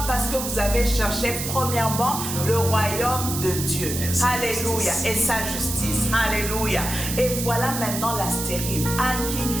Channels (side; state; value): right; noise; hiss, 5 dB below the sound